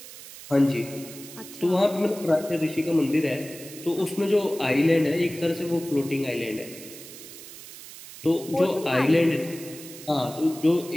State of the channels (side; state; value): right; noise; hiss, 15 dB below the sound